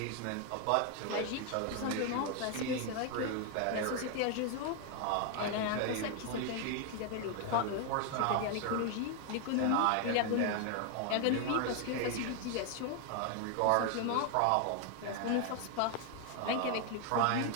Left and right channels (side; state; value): both; different; correlation 0.00